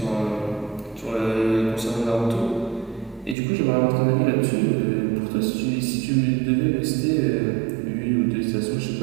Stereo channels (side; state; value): left; drops out; at 3.4 s